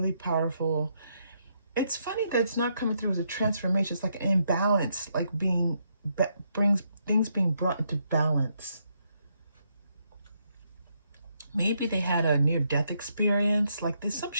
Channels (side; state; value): both; inverted; correlation -0.77